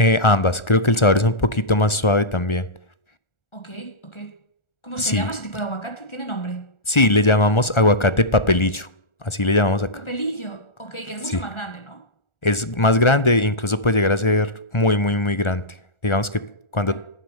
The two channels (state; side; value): late; right; 1.4 ms